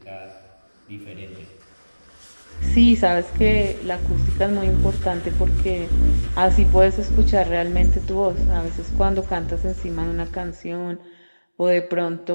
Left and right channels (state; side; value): inverted; both; correlation -1.00